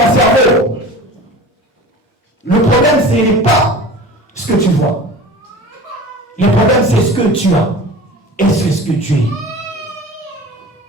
cerveau. Le problème ce n'est pas ce que tu vois. Le problème c'est ce que tu as. Et c'est ce que tu es.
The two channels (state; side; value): normal; both; correlation 0.37